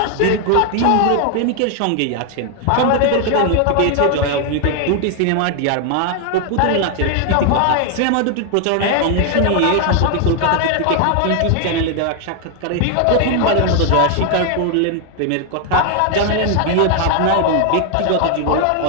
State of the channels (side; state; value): both; different; correlation 0.00